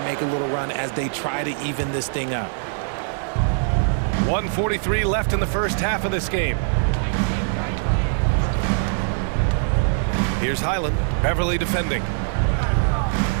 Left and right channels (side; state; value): left; silent; 64 dB below the other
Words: a little run as they try to even this thing up. 1:43 left in the first half of this game. Here's Highland, Beverly defending.